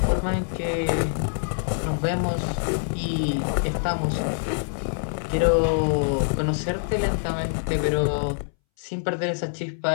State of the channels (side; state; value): right; silent; 62 dB below the other